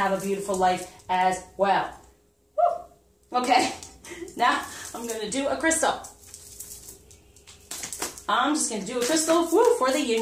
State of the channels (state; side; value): identical; both; correlation 1.00